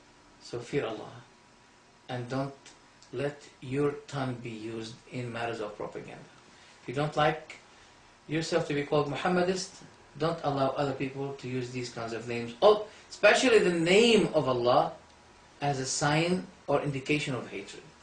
So fear Allah and don't let your tongue be used in matters of propaganda. If you don't like yourself to be called Muhammadist, don't allow other people to use these kinds of names, especially the name of Allah, as a sign or indication of hatred.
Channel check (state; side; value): identical; both; correlation 1.00